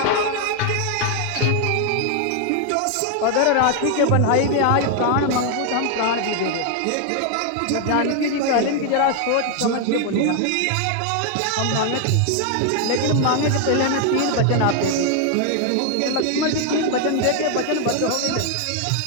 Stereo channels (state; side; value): different; both; correlation 0.00